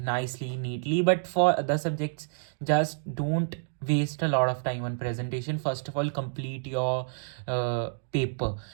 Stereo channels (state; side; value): silent; left; digital silence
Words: neatly. But for other subjects, just don't waste a lot of time on presentation. First of all, complete your paper.